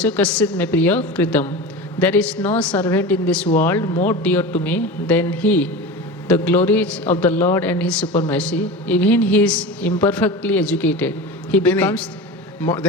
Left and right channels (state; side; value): normal; both; correlation 0.29